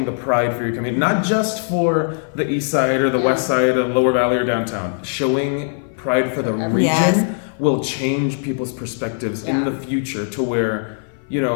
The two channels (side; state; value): right; silent; 56 dB below the other